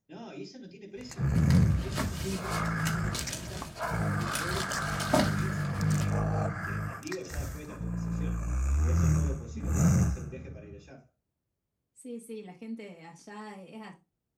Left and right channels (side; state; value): both; identical; correlation 1.00